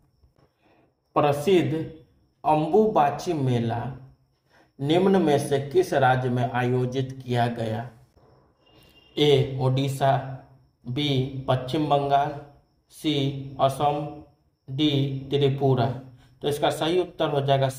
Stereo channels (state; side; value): identical; both; correlation 1.00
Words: प्रसिद्ध अंबुबाची मेला निम्न में से किस राज्य में आयोजित किया गया? ए ओडिशा, बी पश्चिम बंगाल, सी असम, डी त्रिपुरा। तो इसका सही उत्तर हो जाएगा